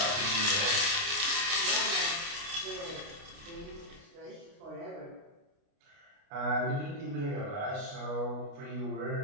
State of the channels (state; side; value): late; left; 29 ms